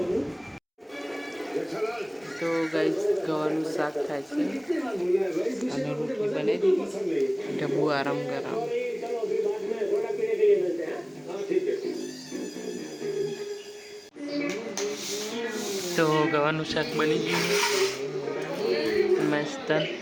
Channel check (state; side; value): identical; both; correlation 1.00